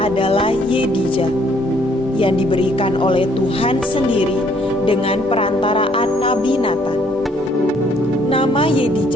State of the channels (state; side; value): normal; both; correlation 0.64